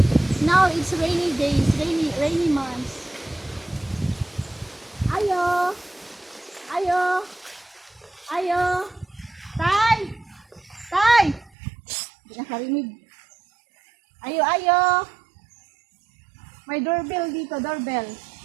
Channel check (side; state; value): left; drops out; at 11.5 s